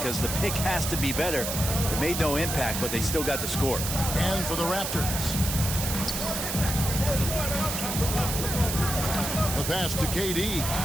the pick has to be better. It made no impact, but they still got the score. And for the Raptors, the pass to KD.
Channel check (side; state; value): right; noise; hiss, 3 dB below the sound